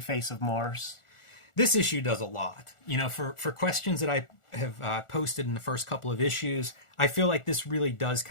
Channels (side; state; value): right; late; 1.4 ms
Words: face of Mars. This issue does a lot. For questions that I have posted in the first couple of issues, I feel like this really does